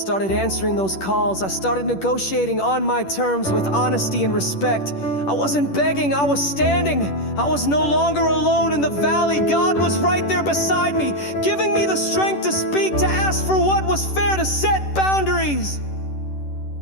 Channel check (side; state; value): right; late; 10 ms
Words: answering those calls. I started negotiating on my terms with honesty and respect. I wasn't begging, I was standing. I was no longer alone in the valley. God was right there beside me, giving me the strength to speak, to ask for what was fair, to set boundaries.